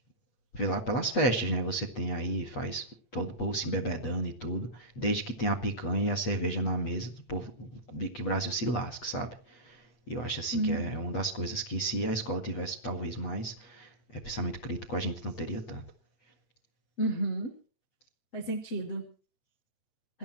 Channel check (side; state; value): right; late; 8.3 ms